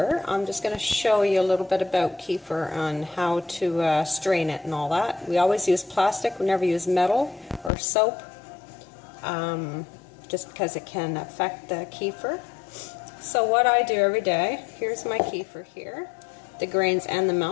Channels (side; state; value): right; drops out; at 7.7 s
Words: I'm just going to show you a little bit about kefir on how to strain it and all that. We always use plastic, we never use metal or soap, just because it can affect the kefir. So what I do every day, here's my kefir here, the grains and the